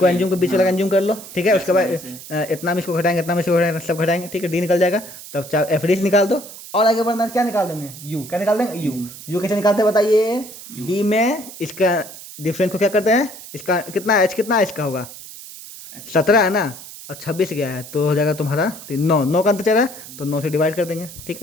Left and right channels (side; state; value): right; noise; hiss, 15 dB below the sound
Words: एंज्यूम के बीच वाला एंज्यूम कर लो। ठीक है, उसके बाद इतना में इसको घटाएंगे, इतना में इसको घटाएंगे, सब घटाएंगे। ठीक है, डी निकल जाएगा, तब चाहे एफ डी निकाल दो, और आगे बढ़ना क्या निकाल देंगे, यू, क्या निकाल देंगे यू कैसे निकालते हैं बताइए, डी में इसका डिफरेंस को क्या करते हैं, इसका कितना एच कितना इसका होगा 17 है ना, और 26 गया है, तो हो जाएगा तुम्हारा 9 का अंतर चल रहा है, तो 9 से डिवाइड कर देंगे। ठीक